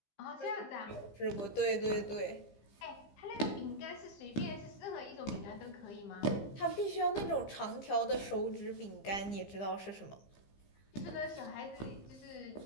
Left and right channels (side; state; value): right; late; 15 ms